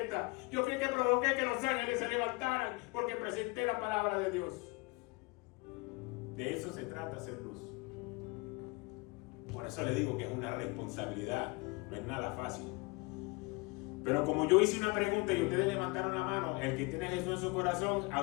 Yo fui el que provoqué que los ángeles se levantaran porque presenté la palabra de Dios. De eso se trata, hacer luz. Por eso le digo que es una responsabilidad, no es nada fácil. Pero como yo hice una pregunta y ustedes levantaron la mano, el que tiene a Jesús en su corazón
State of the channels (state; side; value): quieter; right; 26.6 dB